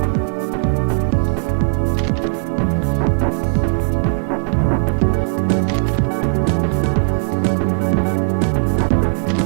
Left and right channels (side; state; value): left; silent; digital silence